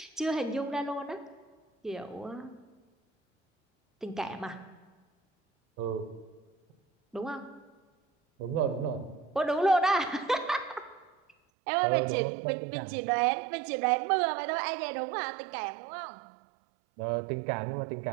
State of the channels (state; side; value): drops out; left; at 11.4 s